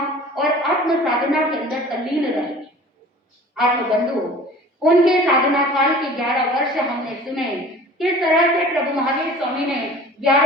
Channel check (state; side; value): normal; both; correlation 0.44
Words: और आत्म साधना के अंदर तल्लीन रहे। आत्मबंधु उनके साधना काल के 11 वर्ष हमने सुने किस तरह से प्रभु महावीर स्वामी ने